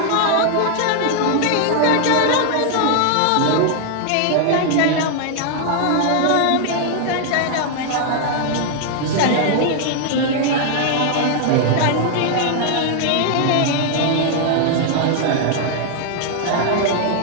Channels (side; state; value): both; different; correlation 0.00